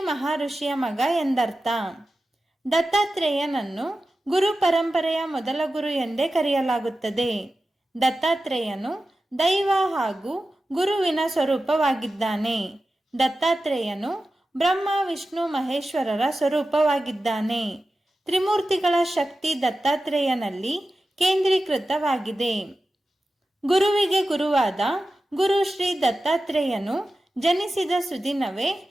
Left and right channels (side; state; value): both; normal; correlation 0.93